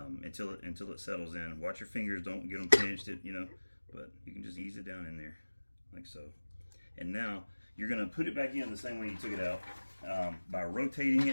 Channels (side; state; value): both; inverted; correlation -1.00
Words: until it settles in. Watch your fingers, don't get them pinched, but you can just ease it down in there like so. And now you're gonna put it back in the same way you took it out by rotating